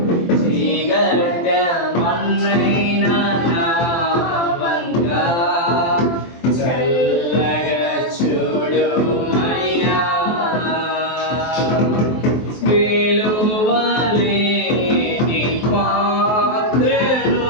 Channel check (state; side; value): late; right; 23 ms